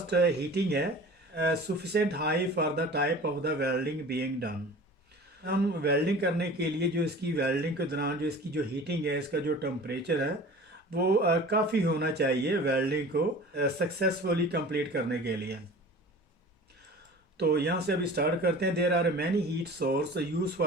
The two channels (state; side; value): normal; both; correlation 0.41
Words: हीटिंग है, sufficient high for the type of the welding being done. हम वेल्डिंग करने के लिए जो इसकी वेल्डिंग के दौरान जो इसकी जो हीटिंग है, इसका जो टेम्परेचर है वो काफ़ी होना चाहिए वेल्डिंग को सक्सेसफुली कंप्लीट करने के लिए। तो यहाँ से अभी स्टार्ट करते हैं। There are many heat source use